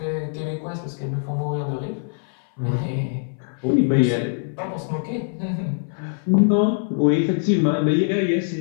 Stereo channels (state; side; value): silent; right; 59 dB below the other